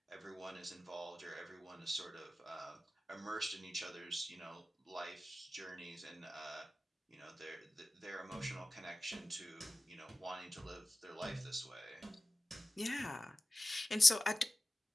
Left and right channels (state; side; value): normal; both; correlation 0.96